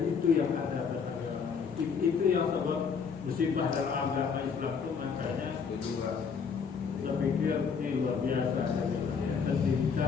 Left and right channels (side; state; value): right; quieter; 6.0 dB